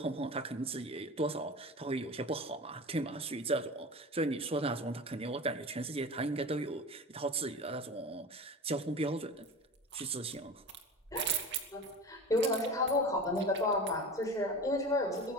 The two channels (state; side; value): normal; both; correlation 0.32